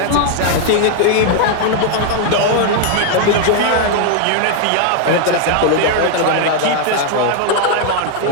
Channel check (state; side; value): different; both; correlation 0.00